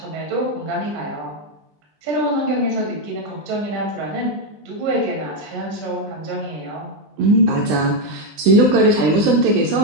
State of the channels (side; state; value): left; late; 20 ms